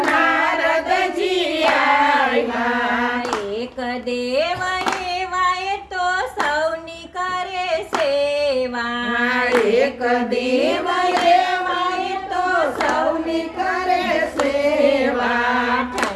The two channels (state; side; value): identical; both; correlation 1.00